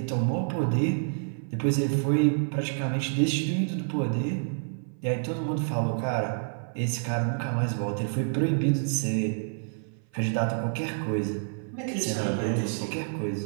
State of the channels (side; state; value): left; silent; 56 dB below the other